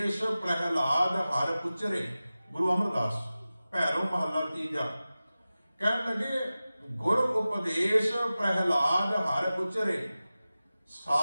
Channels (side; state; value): both; inverted; correlation -0.96